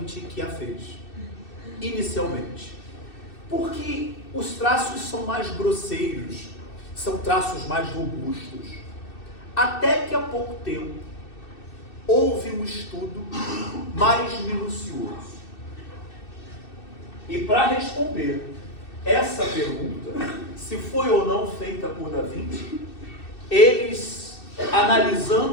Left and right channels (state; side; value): late; right; 2.6 ms